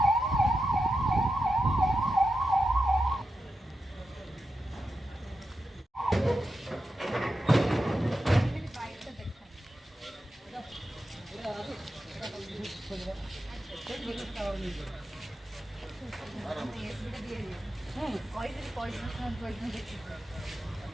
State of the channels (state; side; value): normal; both; correlation 0.89